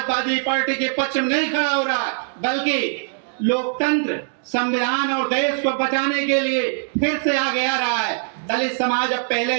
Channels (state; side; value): silent; left; 65 dB below the other